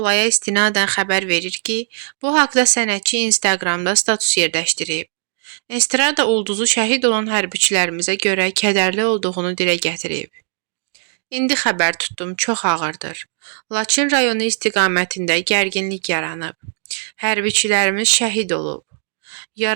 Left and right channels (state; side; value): silent; left; digital silence